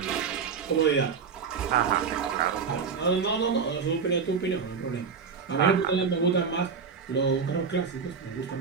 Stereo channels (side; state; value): left; quieter; 5.8 dB